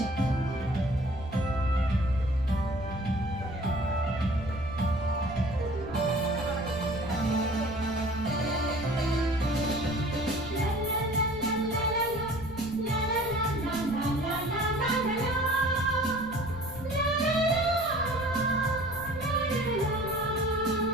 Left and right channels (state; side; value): noise; left; rumble, 13 dB below the sound